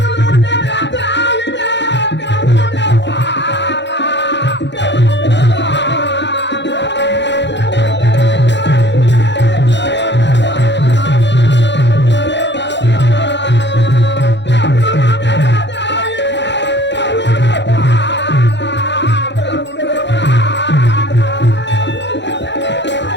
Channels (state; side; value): late; right; 0.52 ms